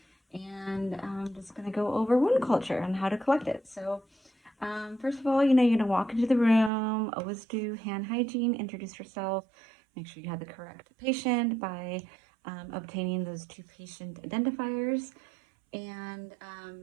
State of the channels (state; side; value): drops out; left; at 6.7 s